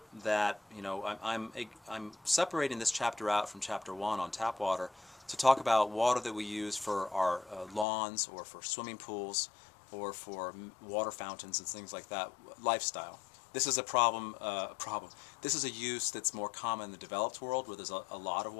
that, I'm separating this chapter out from chapter 1 on tap water to talk about water that we use for our lawns or for swimming pools or for water fountains and things like that. Lifestyle. This is a problem. This is a use that's more common in the developed world, where there's a lot of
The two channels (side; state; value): right; drops out; at 7.9 s